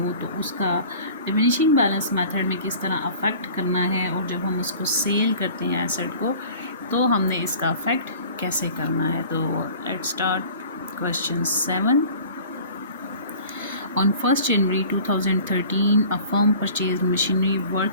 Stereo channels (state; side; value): inverted; both; correlation -0.45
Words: तो उसका डिमिनिशिंग बैलेंस मेथड में किस तरह अफेक्ट करना है, और जब हम उसको सेल करते हैं एसेट को तो हमने इसका अफेक्ट कैसे करना है। तो let's start Question 7. On 1st January 2013, a firm purchased machinery